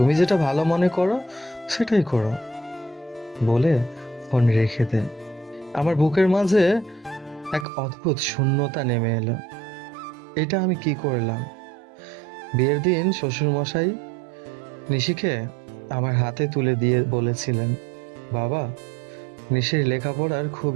যেটা ভালো মনে করো সেটাই করো। বলে ফোন রেখে দে। আমার বুকের মাঝে এক অদ্ভুত শূন্যতা নেমে এলো। এটা আমি কি করলাম? বিয়ের দিন শ্বশুরমশাই নিশিকে আমার হাতে তুলে দিয়ে বলেছিলেন, বাবা, নিশির লেখাপড়ার খুব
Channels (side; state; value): left; drops out; at 7.7 s